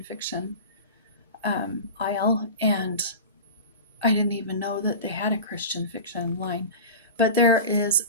fiction aisle, and I didn't even know that they had a Christian fiction line. But there is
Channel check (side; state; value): both; inverted; correlation -0.31